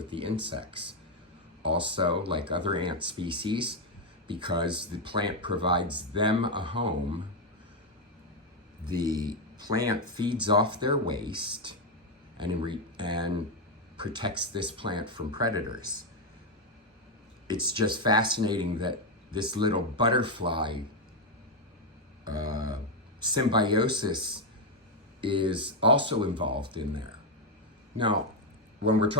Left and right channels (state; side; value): normal; both; correlation 0.04